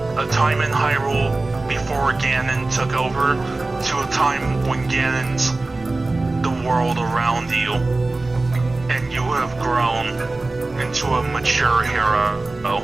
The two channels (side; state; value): left; quieter; 3.2 dB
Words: a time in Hyrule before Ganon took over to a time when Ganon's the world around you, and you have grown into a mature hero